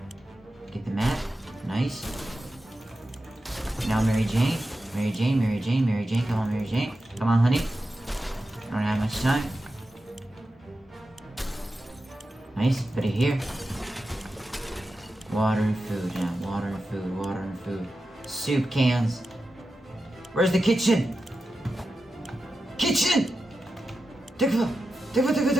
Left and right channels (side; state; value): both; normal; correlation 0.91